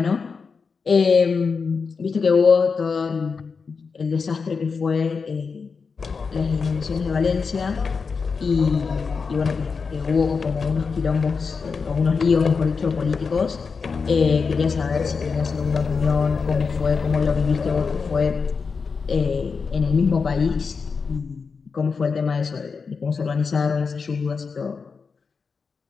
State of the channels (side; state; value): right; quieter; 5.1 dB